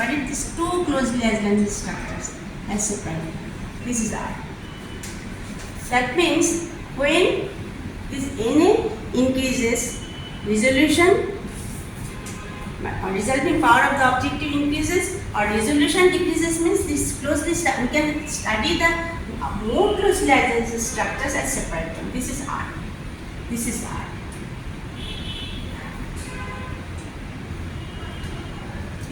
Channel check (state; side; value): identical; both; correlation 1.00